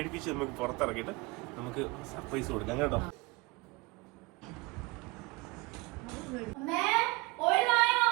നമുക്ക് പുറത്തിറക്കിയിട്ട് നമുക്ക് സർപ്രൈസ് കൊടുക്കാം കേട്ടോ.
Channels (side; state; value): left; quieter; 24.2 dB